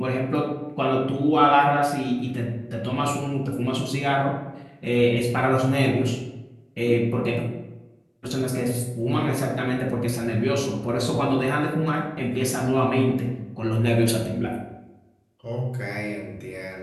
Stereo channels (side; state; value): both; identical; correlation 1.00